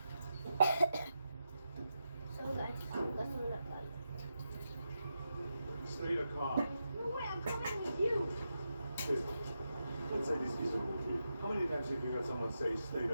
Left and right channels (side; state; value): both; inverted; correlation -0.87